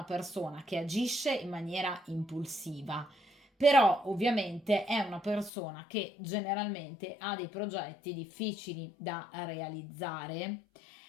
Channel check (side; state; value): right; drops out; at 5.5 s